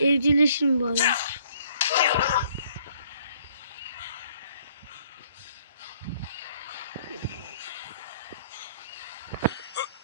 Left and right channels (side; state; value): both; inverted; correlation -0.62